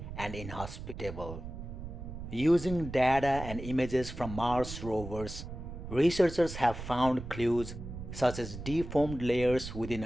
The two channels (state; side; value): noise; right; rumble, 9 dB below the sound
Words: and inhospitable. Using data and images from Mars rovers, researchers have found clues such as deformed layers within